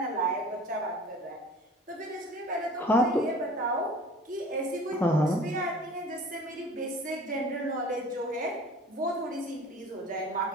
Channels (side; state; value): both; normal; correlation 0.44